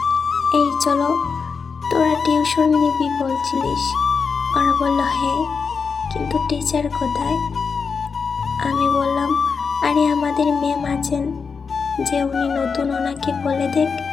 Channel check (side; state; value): right; quieter; 5.4 dB